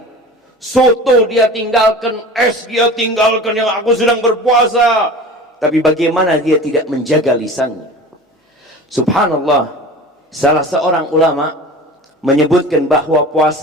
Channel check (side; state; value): both; normal; correlation 0.37